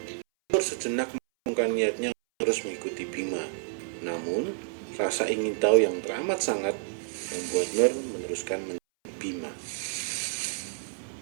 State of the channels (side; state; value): left; silent; 58 dB below the other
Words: Nur sejenak mengurungkan niatnya terus mengikuti Bima. Namun, rasa ingin tahu yang teramat sangat membuat Nur meneruskan mencari Bima.